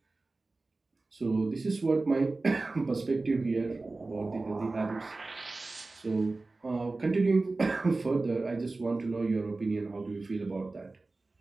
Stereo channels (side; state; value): left; quieter; 3.4 dB